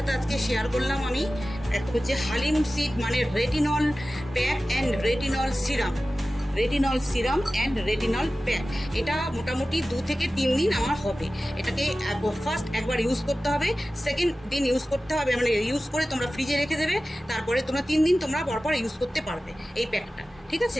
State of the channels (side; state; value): both; normal; correlation 0.95